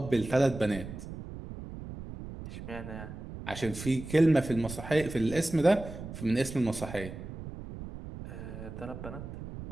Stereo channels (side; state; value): right; noise; rumble, 11 dB below the sound